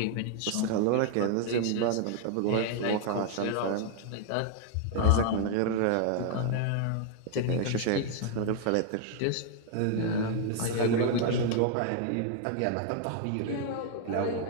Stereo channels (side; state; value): both; different; correlation 0.00